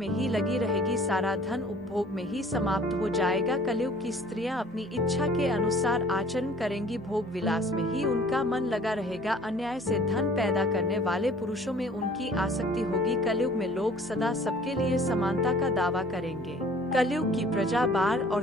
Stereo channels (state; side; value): normal; both; correlation 0.51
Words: ही लगी रहेगी। सारा धन उपभोग में ही समाप्त हो जाएगा। कलयुग की स्त्रियां अपनी इच्छा के अनुसार आचरण करेंगी। भोग विलास में ही उनका मन लगा रहेगा। अन्याय से धन पैदा करने वाले पुरुषों में उनकी आसक्ति होगी। कलयुग में लोग सदा सबके लिए समानता का दावा करेंगे। कलयुग की प्रजा बाढ़ और